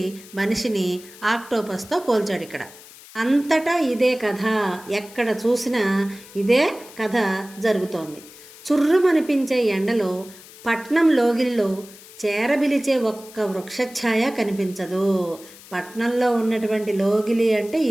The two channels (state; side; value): noise; left; hiss, 20 dB below the sound